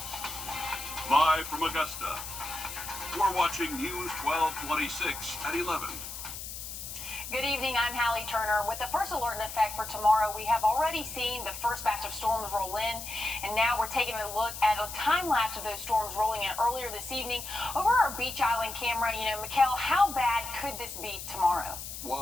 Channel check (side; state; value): left; noise; hiss, 9 dB below the sound